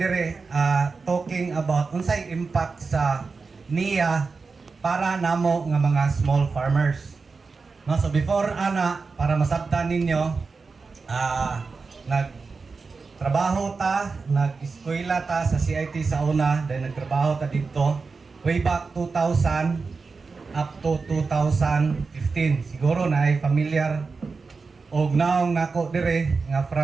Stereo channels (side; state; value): left; quieter; 4.5 dB